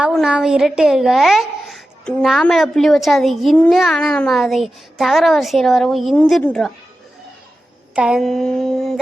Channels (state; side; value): normal; both; correlation 0.92